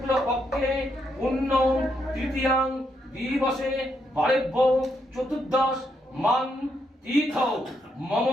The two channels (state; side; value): normal; both; correlation 0.78